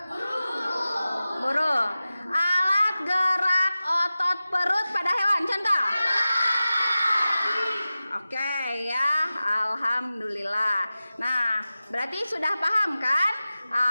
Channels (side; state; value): both; inverted; correlation -0.96